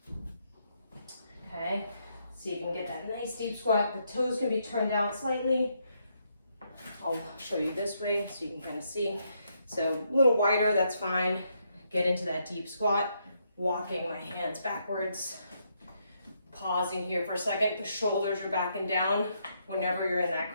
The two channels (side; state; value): both; inverted; correlation -0.76